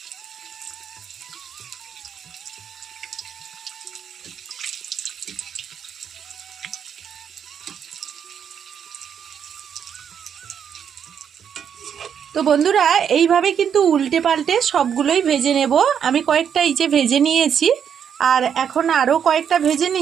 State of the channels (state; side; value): quieter; left; 8.0 dB